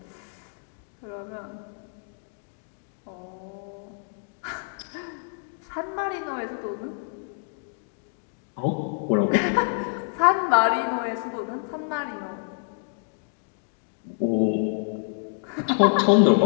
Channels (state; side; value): silent; right; digital silence